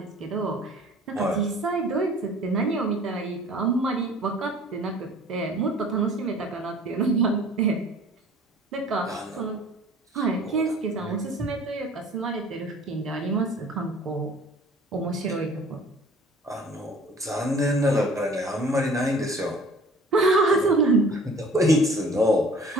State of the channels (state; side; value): normal; both; correlation 0.49